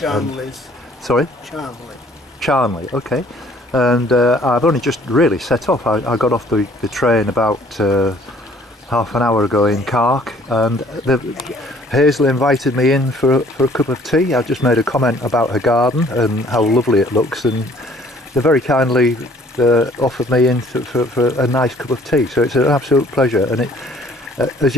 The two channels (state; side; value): normal; both; correlation 0.57